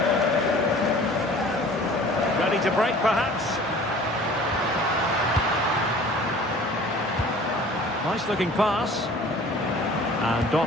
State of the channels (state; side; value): normal; both; correlation 0.47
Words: Ready to break, perhaps. Nice-looking pass. And